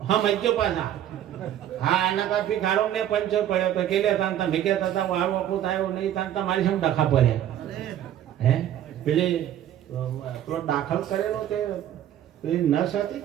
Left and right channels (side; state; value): left; quieter; 11.3 dB